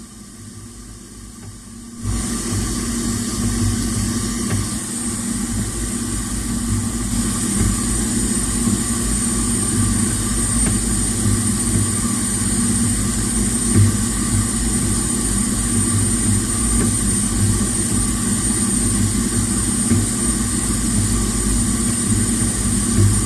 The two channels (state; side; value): identical; both; correlation 1.00